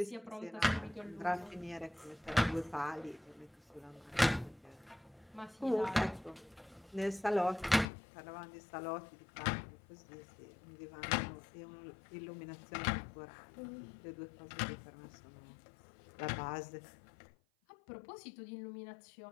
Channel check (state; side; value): drops out; right; at 7.9 s